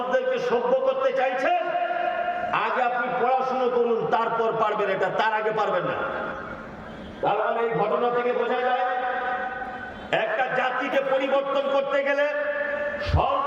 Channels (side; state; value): both; identical; correlation 1.00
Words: সভ্য করতে চাইছেন, আগে আপনি পড়াশোনা করুন, তারপর পারবেন এটা, তার আগে পারবেন না। তার মানে এই ঘটনা থেকে বোঝা যায়, একটা জাতিকে পরিবর্তন করতে গেলে